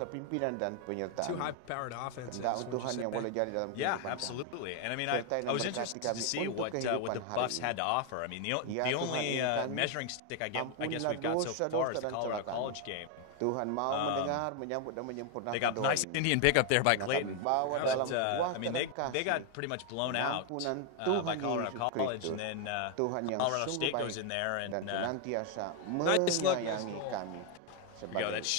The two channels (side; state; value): both; different; correlation 0.01